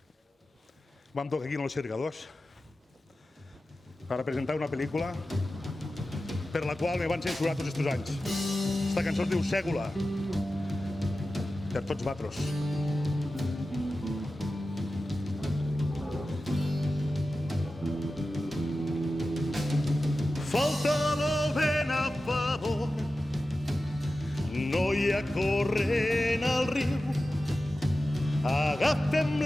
vam tocar aquí en els Cercadors per presentar una pel·lícula per la qual me van censurar tots aquests anys. Esta cançó es diu Ségula, per tots vosaltres. Falta el vent a favor, no hi ha corrent al riu. Agafem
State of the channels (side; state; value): both; normal; correlation 0.94